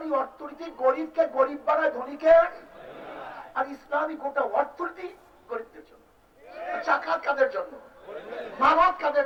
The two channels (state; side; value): identical; both; correlation 1.00